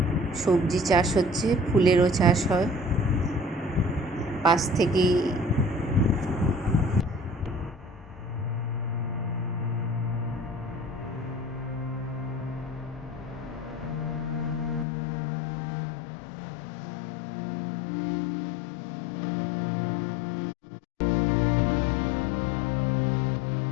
সবজি চাষ হচ্ছে, ফুলেরও চাষ হয়। পাশ থেকেই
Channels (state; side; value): drops out; right; at 14.9 s